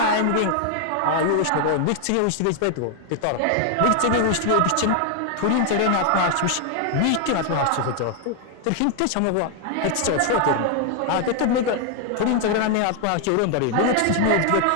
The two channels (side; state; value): both; different; correlation 0.00